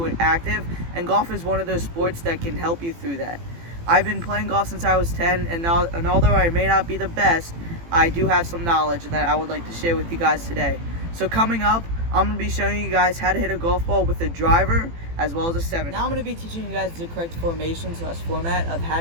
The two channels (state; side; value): late; left; 18 ms